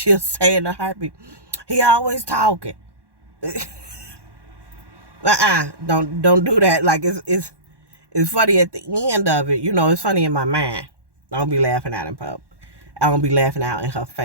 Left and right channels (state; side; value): late; left; 1.1 ms